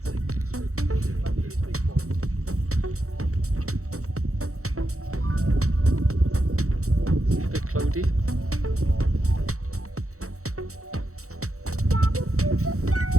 A bit cloudy.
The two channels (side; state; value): left; late; 0.64 ms